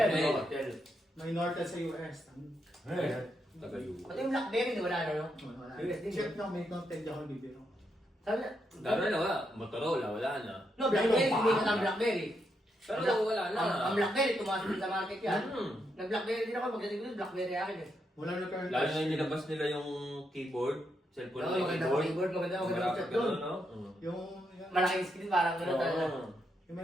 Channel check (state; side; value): normal; both; correlation 0.81